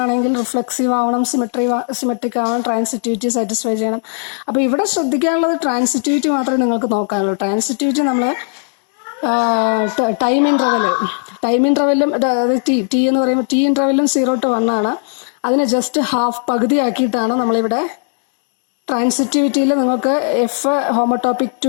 ആണെങ്കിൽ റിഫ്ലെക്സീവ് ആവണം, സിമെട്രിക് ആവണം, ട്രാൻസിറ്റിവിറ്റി സാറ്റിസ്ഫൈ ചെയ്യണം. അപ്പോൾ ഇവിടെ ശ്രദ്ധിക്കാനുള്ളത് ട്രാൻസിറ്റിവിറ്റി മാത്രമേ നിങ്ങൾക്ക് നോക്കാനുള്ളൂ. ട്രാൻസിറ്റിവിറ്റി നമ്മൾ ടൈം ഇൻ്റർവെല്ലും അതായത് ടി എന്ന് പറയുമ്പോൾ ടി ഇൻ്റർവെല്ലും 0 to 1 ആണ്. അതിനെ ജസ്റ്റ് പകുതിയാക്കിയിട്ടാണ് നമ്മളിവിടെ ട്രാൻസിറ്റിവിറ്റിയിൽ നിങ്ങൾക്ക് f homotopic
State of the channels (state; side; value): silent; right; 56 dB below the other